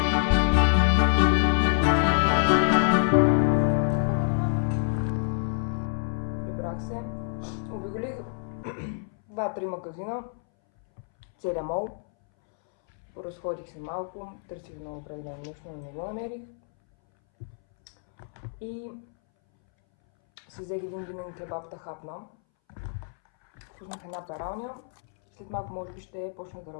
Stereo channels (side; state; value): right; silent; 60 dB below the other